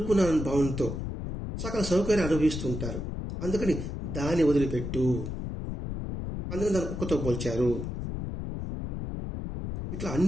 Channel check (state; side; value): noise; left; rumble, 5 dB below the sound